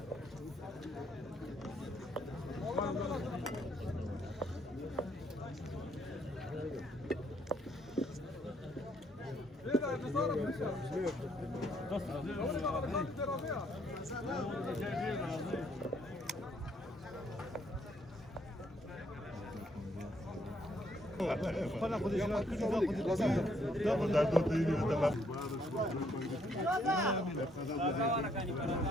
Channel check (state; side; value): normal; both; correlation 0.70